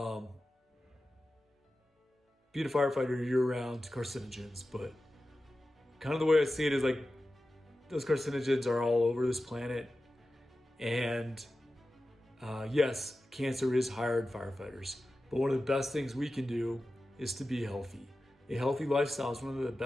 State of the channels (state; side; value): normal; both; correlation 0.94